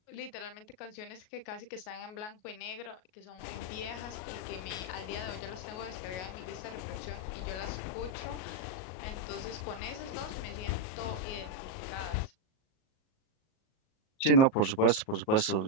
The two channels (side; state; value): right; late; 38 ms